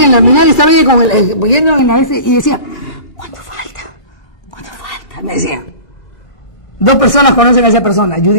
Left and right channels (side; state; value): right; late; 2.3 ms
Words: el Almenara estaba ella yendo en la y decía, ¿cuánto falta? Me decía. 2 personas conocen a esa persona,